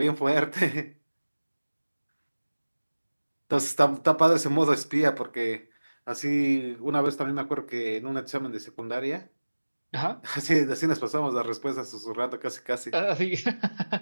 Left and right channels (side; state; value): both; inverted; correlation -1.00